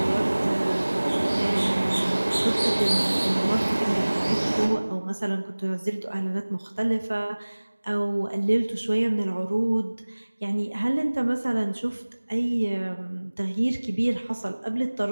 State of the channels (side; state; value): both; inverted; correlation -1.00